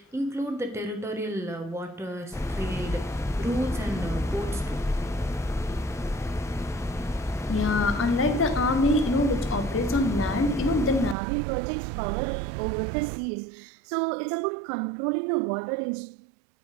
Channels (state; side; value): drops out; left; at 11.2 s